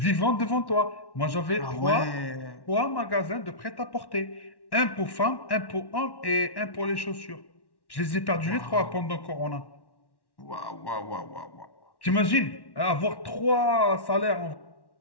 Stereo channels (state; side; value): late; right; 1.1 ms